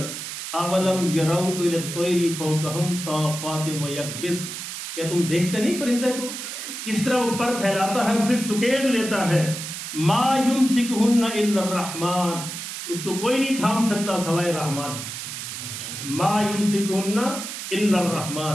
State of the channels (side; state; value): right; noise; hiss, 7 dB below the sound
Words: اولم یروا الی الطیر فوقہم صافات ویکبس، کیا تم دیکھتے نہیں پرندے کو کس طرح وہ پر پھیلاتا ہے پھر سکیڑ لیتا ہے. ما یمسکہن الا الرحمن، اس کو کوئی نہیں تھام سکتا سوائے رحمان. ما یمسکہن الا